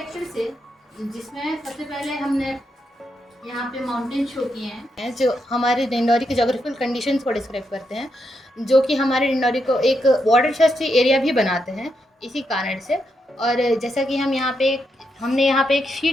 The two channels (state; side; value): normal; both; correlation 0.82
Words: से, जिसमें सबसे पहले हमने यहाँ पे माउंटेन शो किए हैं जो हमारे डिंडौरी के जोग्राफिकल कंडीशंस को डिस्क्राइब करते हैं, जो कि हमारे डिंडौरी को एक वाटरशेड एरिया भी बनाते हैं इसी कारण से। और जैसा कि हमने यहाँ पे एक